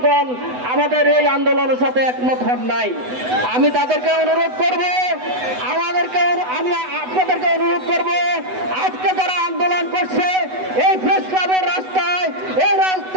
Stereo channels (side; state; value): left; late; 8.0 ms